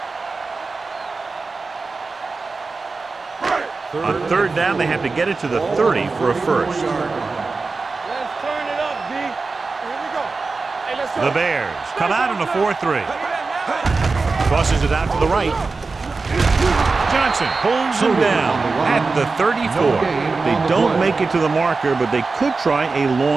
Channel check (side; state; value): left; quieter; 4.1 dB